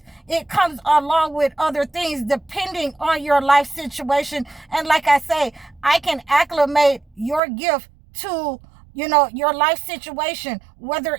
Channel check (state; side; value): drops out; left; at 7.4 s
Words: it comes along with other things depending on your life situation. And like I say, I can acclimate your gift to your life situation, whether